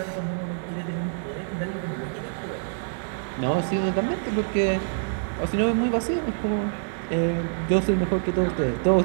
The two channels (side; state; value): left; silent; 56 dB below the other